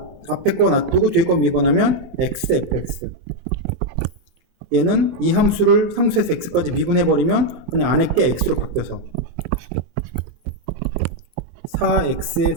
놔두고 뒤에 거 미분하면 x fx. 얘는 이 함수를 상수에서 x까지 미분해버리면 그냥 안에 게 x로 바뀌어서 4x의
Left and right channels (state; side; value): late; left; 24 ms